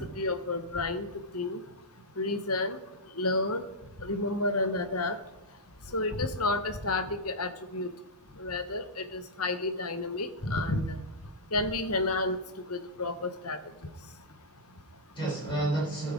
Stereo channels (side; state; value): both; normal; correlation -0.09